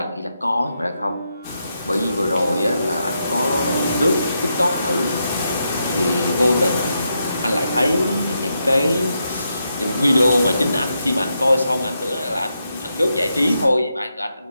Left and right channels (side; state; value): both; inverted; correlation -0.83